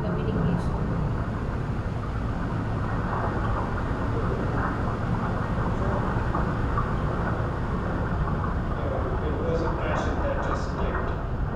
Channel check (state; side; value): identical; both; correlation 1.00